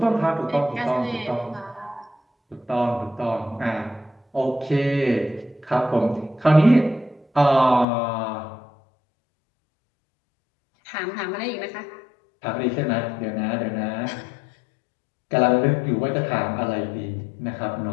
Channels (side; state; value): right; drops out; at 7.9 s